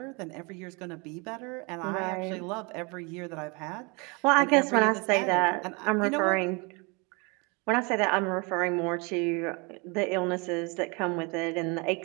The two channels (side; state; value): left; quieter; 29.7 dB